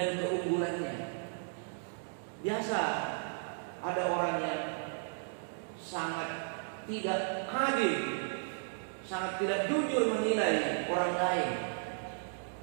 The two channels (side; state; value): left; silent; digital silence